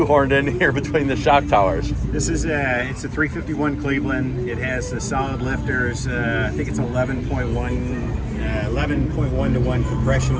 in here between the shock towers. This is it's a 351 Cleveland. It has the solid lifters. I think it's 11.1 to 1 compression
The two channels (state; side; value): identical; both; correlation 1.00